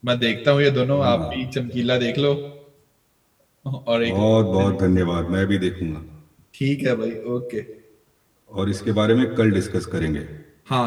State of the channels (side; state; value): both; identical; correlation 1.00